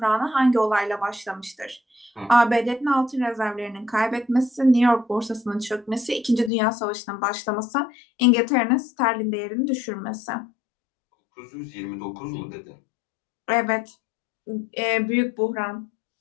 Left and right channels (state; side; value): drops out; right; at 6.5 s